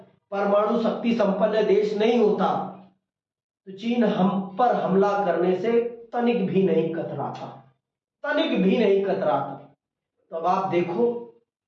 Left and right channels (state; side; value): identical; both; correlation 1.00